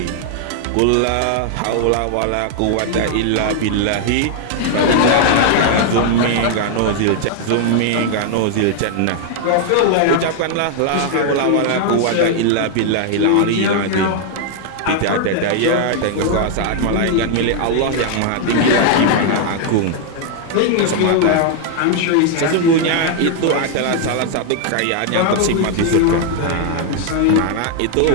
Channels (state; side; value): different; both; correlation 0.00